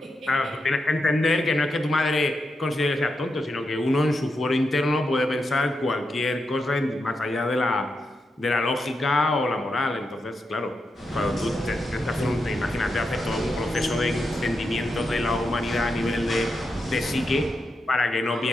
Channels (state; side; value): normal; both; correlation 0.86